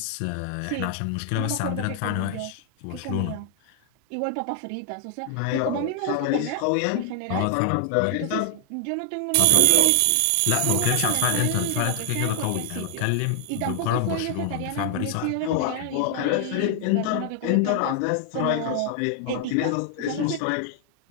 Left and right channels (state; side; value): different; both; correlation 0.00